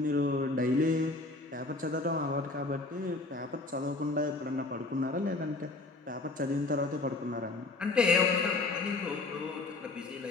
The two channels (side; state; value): right; quieter; 3.3 dB